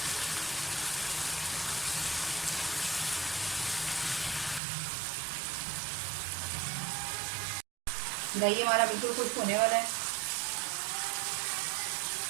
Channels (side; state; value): left; drops out; at 4.6 s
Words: दही हमारा बिल्कुल खुश्क होने वाला है।